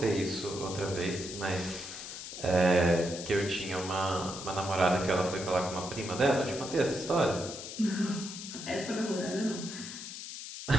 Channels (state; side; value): noise; left; hiss, 9 dB below the sound